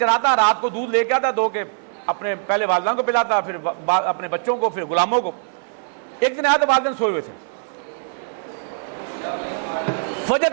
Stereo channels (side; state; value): left; silent; 64 dB below the other